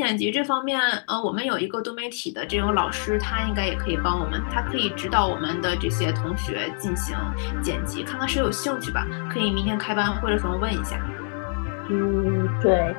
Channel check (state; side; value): silent; right; digital silence